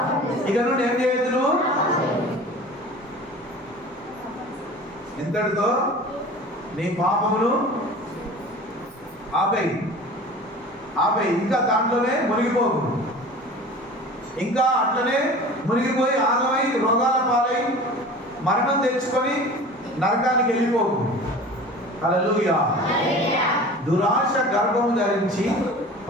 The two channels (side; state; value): both; normal; correlation 0.39